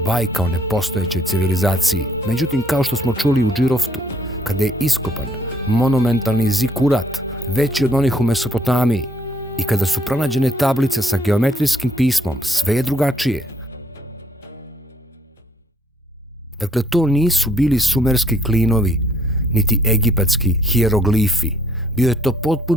bajka o nepostojećoj civilizaciji. Međutim, kao što smo čuli u Džiroftu, kada je iskopan monumentalni zikurat, veći od onih u Mesopotamiji, i kada su pronađene tablice sa geometrijskim pismom, sve je drugačije. Dakle, to nisu bili sumerski klinovi, niti egipatski hijeroglifi. Bio je to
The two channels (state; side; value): normal; both; correlation 0.64